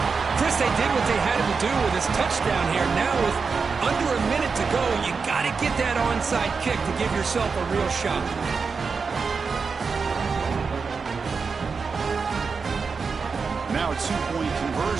Chris, they did what they had to do with this touchdown here. Now with under a minute to go, you got to get that onside kick to give yourself a real shot. Now a two-point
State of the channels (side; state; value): left; quieter; 5.1 dB